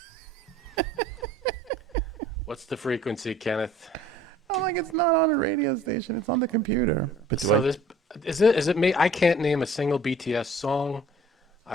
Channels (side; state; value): both; normal; correlation 0.52